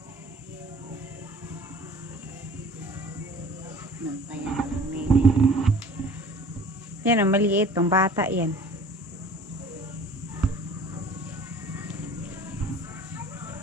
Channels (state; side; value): normal; both; correlation 0.46